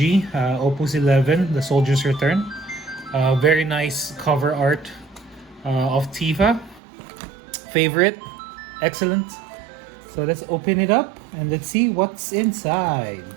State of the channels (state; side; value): drops out; left; at 6.8 s